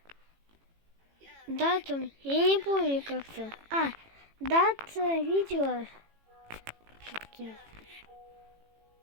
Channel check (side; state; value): left; late; 18 ms